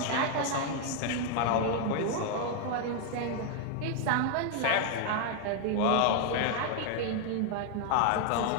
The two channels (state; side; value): different; both; correlation 0.00